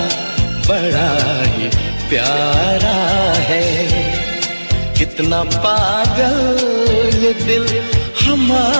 बड़ा ही प्यारा है। कितना पागल ये दिल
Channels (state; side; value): inverted; both; correlation -1.00